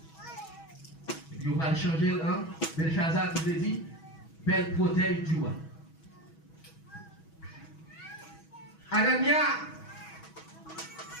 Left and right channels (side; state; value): right; late; 6.2 ms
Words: Et puis on va changer, hein, Belshazzar qui veut dire, belle protège du roi. Anania,